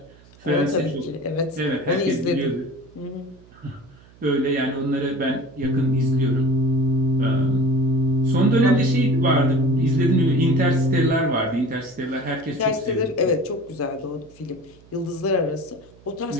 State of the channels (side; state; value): right; noise; hum, 26 dB below the sound